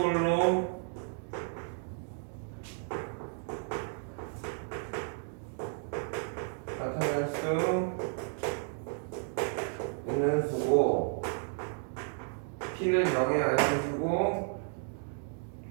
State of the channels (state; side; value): silent; left; 56 dB below the other